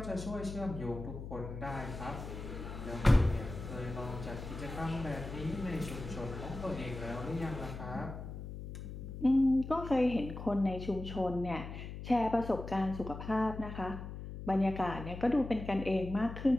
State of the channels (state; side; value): noise; left; hum, 9 dB below the sound